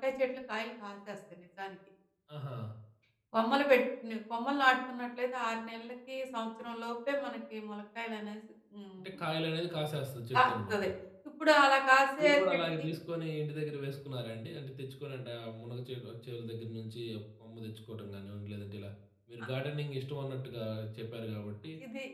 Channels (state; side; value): identical; both; correlation 1.00